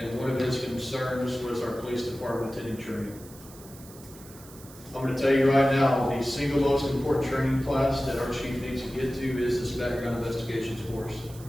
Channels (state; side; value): noise; right; hiss, 20 dB below the sound